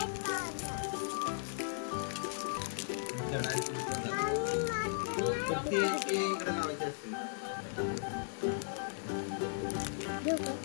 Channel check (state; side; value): silent; right; digital silence